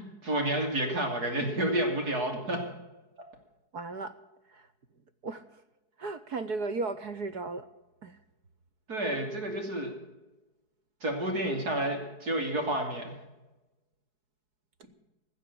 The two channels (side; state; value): left; late; 4.7 ms